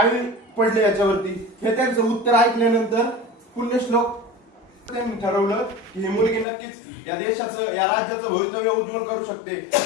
पडले याच्यावरती। हे त्यांचं उत्तर ऐकल्यानंतर पुण्यश्लोक त्यांनी ठरवलं की ही मुलगी नक्कीच या देशाचं या राज्याचं भवितव्य उज्ज्वल करू शकते।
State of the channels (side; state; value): right; drops out; at 6.5 s